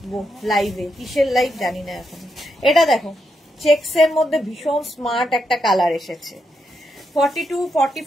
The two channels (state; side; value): normal; both; correlation 0.82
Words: লাইভে, কিসের লাইভ জানি না এখন। এটা দেখো, চেক্স এর মধ্যে ভীষণ স্মার্ট একটা কালার এসেছে। 42,